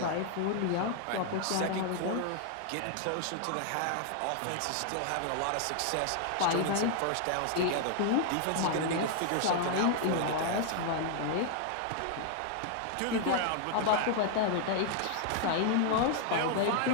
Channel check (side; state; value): both; different; correlation 0.00